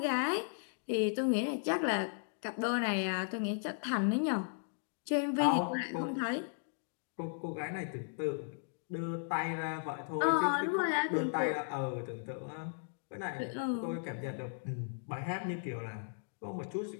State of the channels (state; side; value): silent; right; digital silence